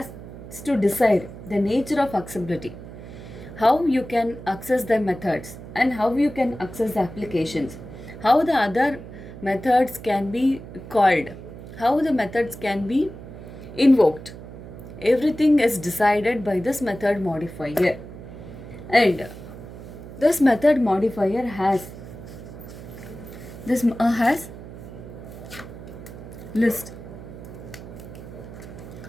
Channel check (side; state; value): right; noise; hum, 14 dB below the sound